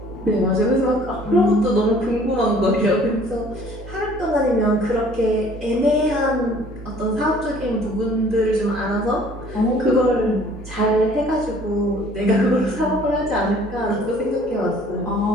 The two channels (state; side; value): normal; both; correlation 0.54